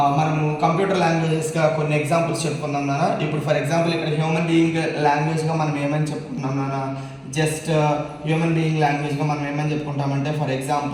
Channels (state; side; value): identical; both; correlation 1.00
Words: మనము కంప్యూటర్ లాంగ్వేజెస్గా కొన్ని ఎగ్జాంపుల్స్ చెప్పుకుందాం నాన్న. ఇప్పుడు ఫర్ ఎగ్జాంపుల్ ఇక్కడ హ్యూమన్ బీయింగ్ లాంగ్వేజ్గా మనం ఏమని చెప్పుకుంటున్నాం నాన్న? జస్ట్ హ్యూమన్ బీయింగ్ లాంగ్వేజ్గా మనం ఏమని చెప్పుకుంటామంటే for